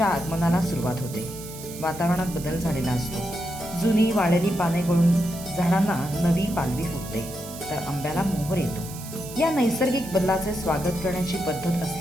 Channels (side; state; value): right; noise; hiss, 14 dB below the sound